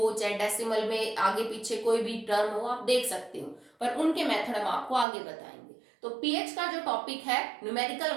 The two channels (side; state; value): left; drops out; at 5.1 s